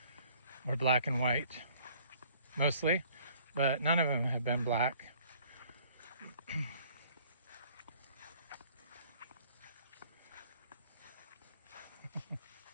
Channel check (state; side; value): inverted; both; correlation -0.56